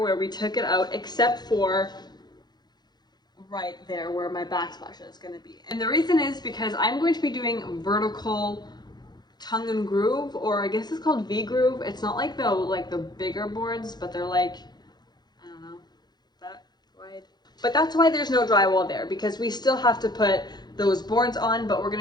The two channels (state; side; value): late; right; 0.20 ms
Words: we took it out, except for right there where my backsplash is going to be. And the reason is because I'm going to be doing vertical tongue and groove, or I guess it's called V-groove. It's not like the bigger boards, but they're like, I don't know, that wide. But that's why there's no drywall there, because we still have to put those boards on, but we're going